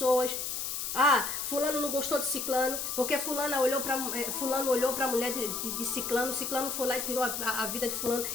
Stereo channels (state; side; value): noise; left; hiss, 3 dB below the sound